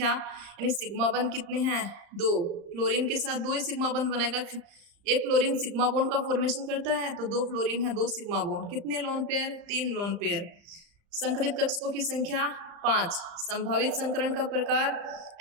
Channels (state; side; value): late; left; 35 ms